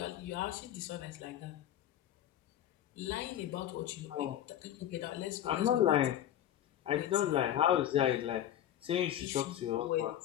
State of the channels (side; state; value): right; quieter; 11.5 dB